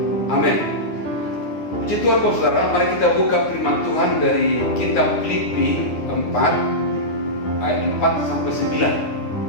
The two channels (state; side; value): late; right; 9.7 ms